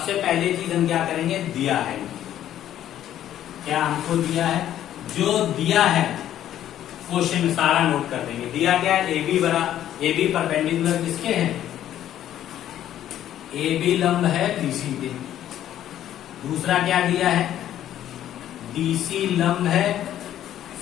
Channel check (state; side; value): quieter; right; 11.6 dB